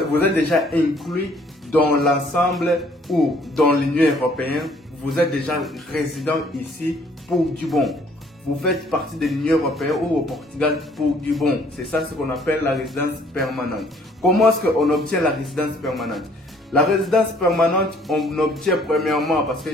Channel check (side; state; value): both; normal; correlation 0.61